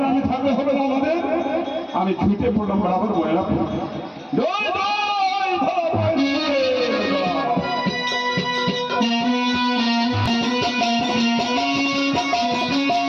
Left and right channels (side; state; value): both; identical; correlation 1.00